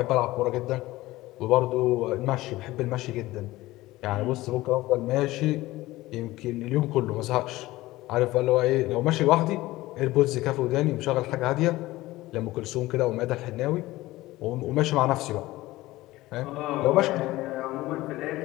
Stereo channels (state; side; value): quieter; right; 18.0 dB